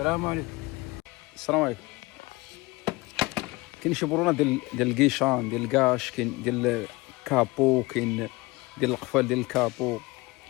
عليكم. السلام عليكم. كاين شي برونه ديال الكيشان، ديال الكاش، كاين ديال الكابو، كاين ديال القفال ديال الكابو.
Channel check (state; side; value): quieter; right; 22.7 dB